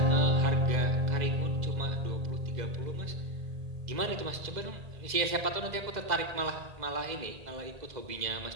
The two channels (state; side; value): late; left; 2.0 ms